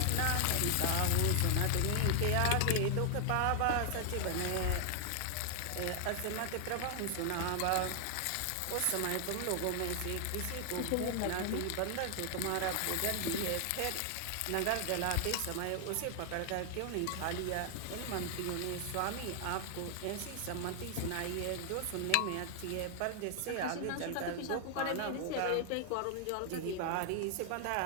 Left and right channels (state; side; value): different; both; correlation 0.00